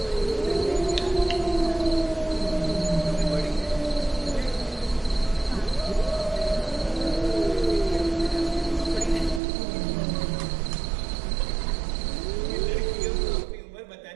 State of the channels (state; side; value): drops out; left; at 9.4 s